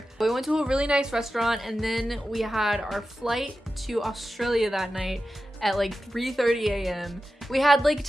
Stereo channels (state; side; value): normal; both; correlation 0.92